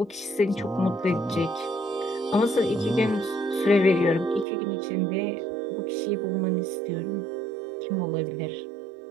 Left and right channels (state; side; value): drops out; left; at 4.5 s